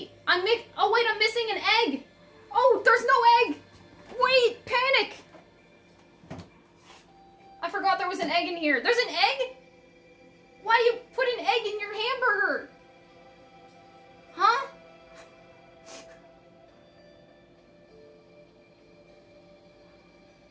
I'm missing an egg. Oh, there's no egg. Wait, panic. I forgot there was an egg in here. There's an egg? Why do you put an egg in your hamburger? Huh?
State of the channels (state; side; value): identical; both; correlation 1.00